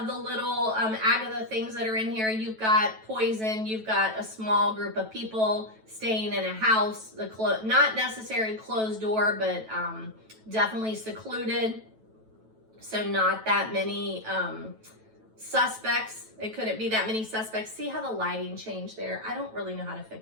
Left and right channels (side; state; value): left; late; 9.1 ms